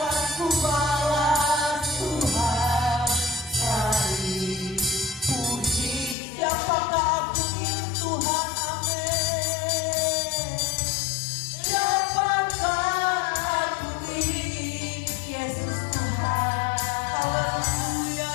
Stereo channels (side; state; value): right; drops out; at 6.2 s